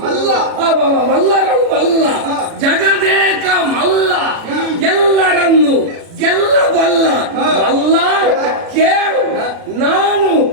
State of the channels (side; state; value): left; late; 36 ms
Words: ಮಲ್ಲ ಮಲ್ಲರಳು ಮಲ್ಲ ಜಗದೇಕ ಮಲ್ಲ ಎಲ್ಲರನ್ನು ಗೆಲ್ಲಬಲ್ಲ ಮಲ್ಲ ಕೇಳು. ನಾನು